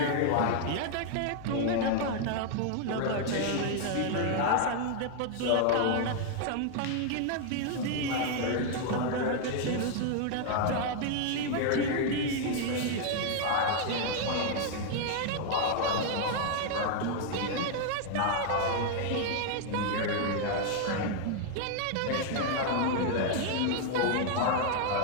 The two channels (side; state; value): both; different; correlation 0.00